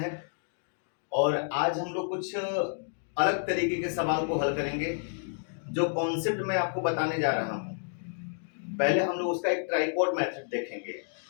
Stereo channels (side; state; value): right; silent; digital silence